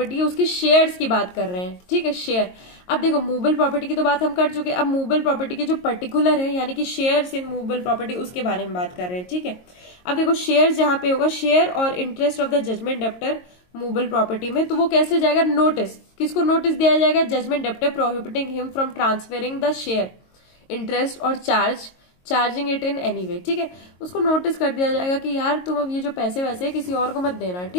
है उसके शेयर्स की बात कर रहे हैं, ठीक है, शेयर। अब देखो मूवेबल प्रॉपर्टी की तो बात हम कर चुके, अब मूवेबल प्रॉपर्टी के जो पर्टिकुलर है यानी कि शेयर्स इन मूवेबल प्रॉपर्टी उसके बारे में बात कर रहे हैं, ठीक है। अब देखो शेयर जहां पे होगा, share or interest of the judgment debtor movable property में, तो वो कैसे जाएगा, नोटिस, किसको नोटिस दिया जाएगा, judgment debtor prohibiting him from transferring the share interest or charging it in any way, ठीक है, उसको नोटिस कर दिया जाएगा कि यार तुम अब ये जो पैसे वैसे है किसी और को मत देना,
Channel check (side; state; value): right; late; 22 ms